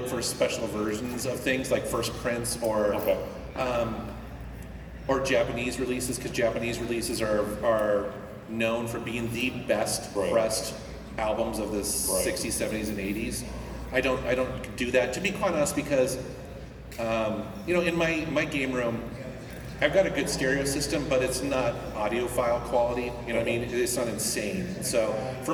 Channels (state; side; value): identical; both; correlation 1.00